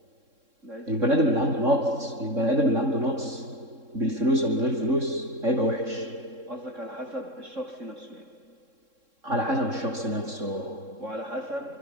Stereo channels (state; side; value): late; left; 3.7 ms